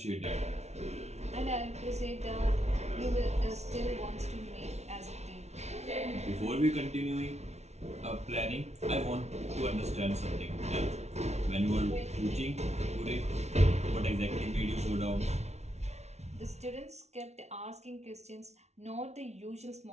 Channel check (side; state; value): left; late; 0.32 ms